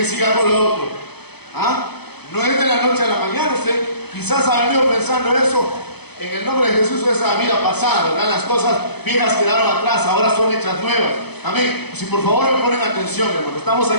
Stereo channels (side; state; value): right; late; 0.98 ms